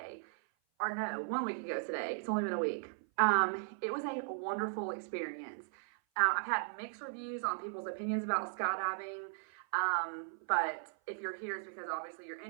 or no, 1 week ago today. It's only been a week. It was a wonderful experience. I've had mixed reviews on people's opinions about skydiving. But if you're here, it's because obviously you're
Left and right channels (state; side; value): silent; left; 53 dB below the other